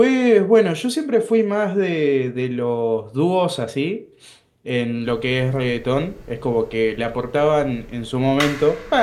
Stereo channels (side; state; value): both; identical; correlation 1.00